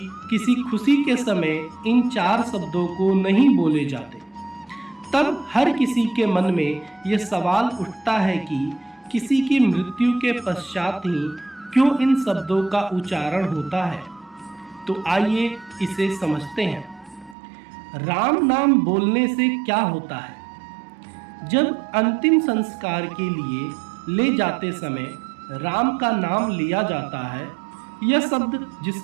किसी खुशी के समय इन 4 शब्दों को नहीं बोले जाते। तब हर किसी के मन में यह सवाल उठता है कि किसी की मृत्यु के पश्चात ही क्यों इन शब्दों का उच्चारण होता है। तो आइए इसे समझते हैं। राम नाम बोलने से क्या होता है? जब अंतिम संस्कार के लिए ले जाते समय राम का नाम लिया जाता है, यह शब्द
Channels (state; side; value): drops out; left; at 17.4 s